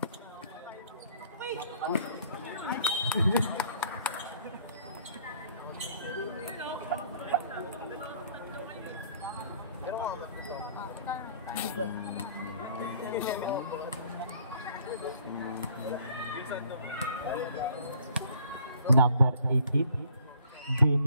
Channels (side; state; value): both; inverted; correlation -0.59